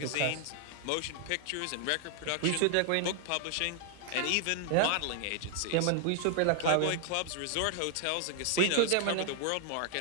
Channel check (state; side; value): different; both; correlation 0.00